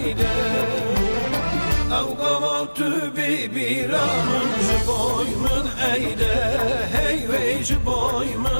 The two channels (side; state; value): both; inverted; correlation -1.00